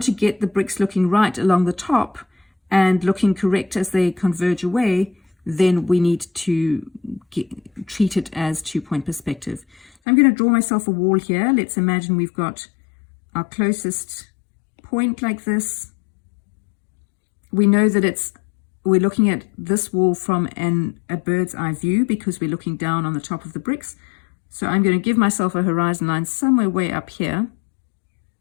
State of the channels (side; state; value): right; drops out; at 9.9 s